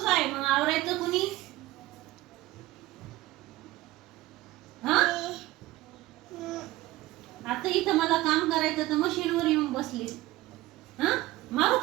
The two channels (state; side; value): quieter; left; 17.7 dB